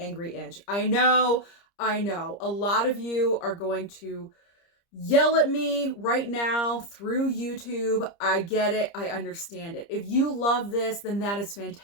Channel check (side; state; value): right; late; 30 ms